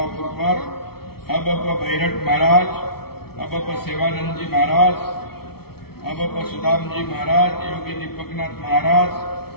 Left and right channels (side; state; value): right; late; 0.95 ms